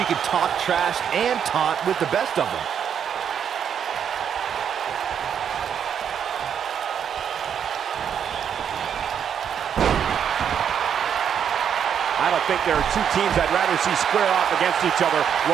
can talk trash and taunt with the best of them. I don't think there are two teams I'd rather see square off against each other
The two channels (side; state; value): left; quieter; 8.2 dB